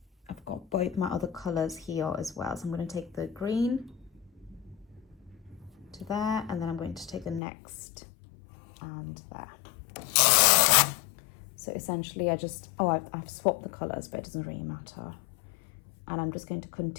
both my other colors here as well. So I'm going to take the green to there, and then I'm going to take the next and there. So essentially I've swapped the colors, but it doesn't really matter. And I'm just going to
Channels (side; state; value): right; drops out; at 7.4 s